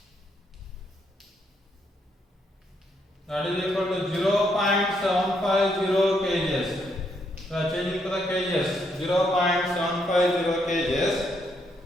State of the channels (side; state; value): both; normal; correlation 0.75